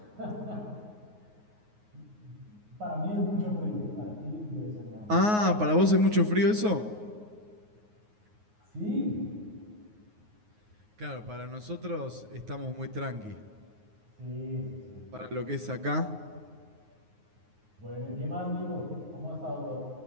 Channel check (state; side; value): late; left; 9.5 ms